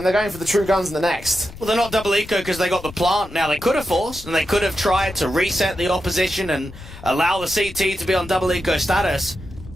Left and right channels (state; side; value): noise; left; rumble, 16 dB below the sound